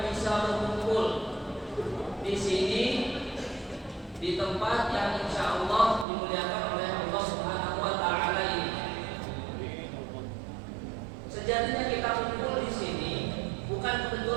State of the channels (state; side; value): drops out; left; at 6.1 s